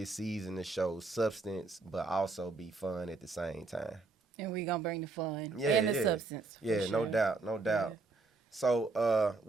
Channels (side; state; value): left; quieter; 3.8 dB